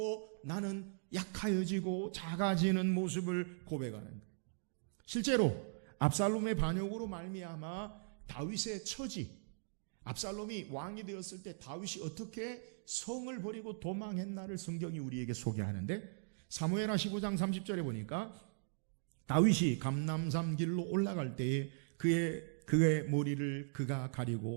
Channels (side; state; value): left; silent; digital silence